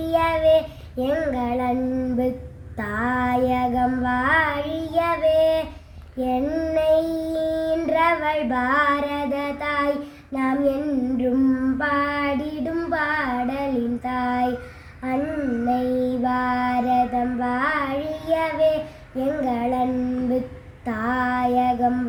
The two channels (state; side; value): identical; both; correlation 1.00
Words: எங்கள் அன்பு தாயகம் வாழியவே. என்னை ஈன்றவள் பாரத தாய், நாம் என்றும் பாடிடும் பாடலின் தாய். அன்னை பாரதம் வாழியவே, எங்கள் அன்பு தாயகம்